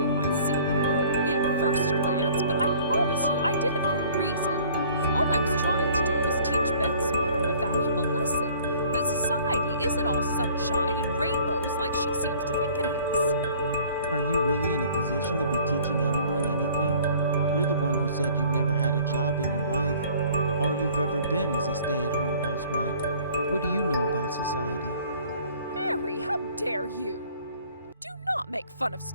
might seem inappropriate at first glance, but I promise you I did it for a reason. All I was trying to do was teach Beth's mother a valuable lesson, that society isn't all sunshine and rainbows like she seems to think it is. Are you really in a position to be teaching anyone anything? You're the one who said you've never had a job in your life. All you've ever been is a stay-at-home housewife. What do you know about society? Harry, how dare you? Do not make fun of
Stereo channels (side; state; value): both; inverted; correlation -0.53